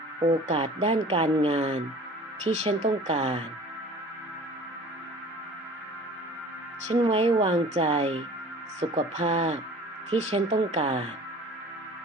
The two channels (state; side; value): normal; both; correlation 0.44